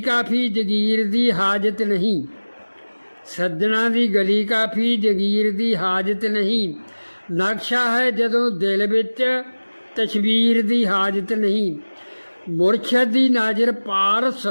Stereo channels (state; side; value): inverted; both; correlation -1.00